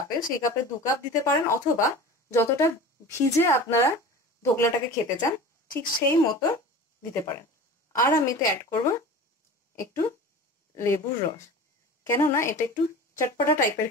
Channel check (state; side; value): normal; both; correlation 0.36